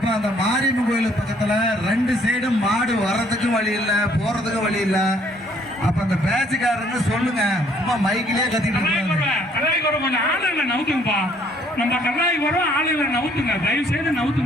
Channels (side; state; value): both; normal; correlation 0.63